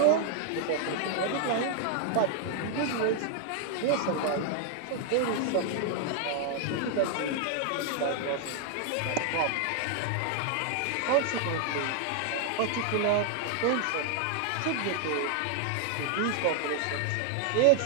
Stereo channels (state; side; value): different; both; correlation 0.00